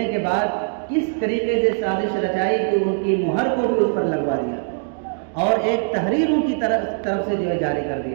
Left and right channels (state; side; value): silent; left; digital silence